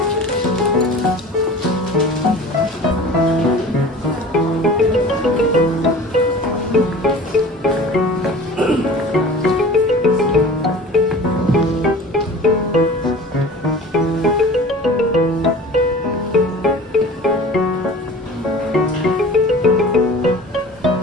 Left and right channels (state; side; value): normal; both; correlation 0.40